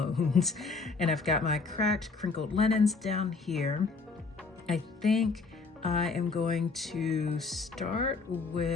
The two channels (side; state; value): right; quieter; 4.2 dB